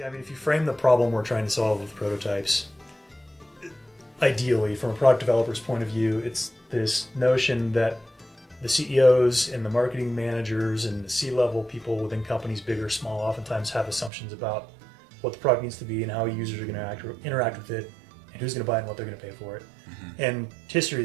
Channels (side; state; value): left; drops out; at 14.1 s